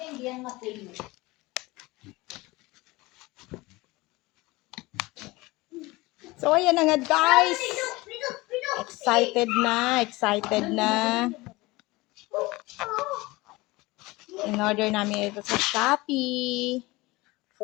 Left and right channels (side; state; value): right; quieter; 21.6 dB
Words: So ayan na nga guys. Excited na. In-order namin ito sa Shopee